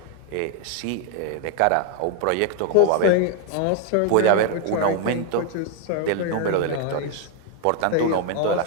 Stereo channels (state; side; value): different; both; correlation 0.00